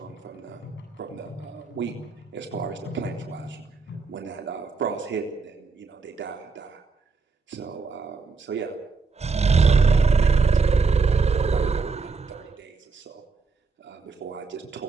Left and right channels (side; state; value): left; quieter; 4.6 dB